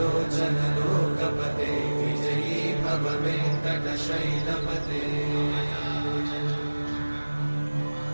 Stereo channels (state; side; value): inverted; both; correlation -1.00